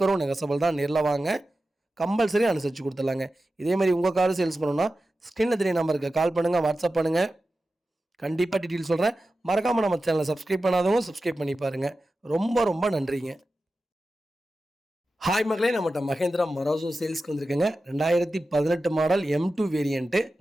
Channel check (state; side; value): normal; both; correlation 0.93